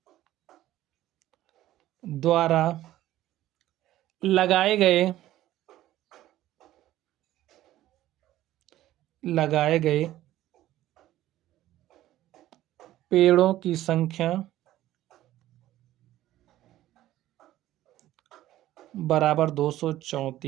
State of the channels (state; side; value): quieter; left; 14.3 dB